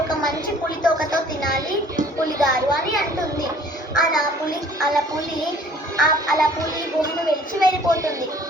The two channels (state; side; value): normal; both; correlation 0.53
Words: ఒక మంచి పులి తోకతో తినాలి పులి గారు అని అంటుంది. అలా పులి గుహను విడిచి వెళ్ళిపోతుంది.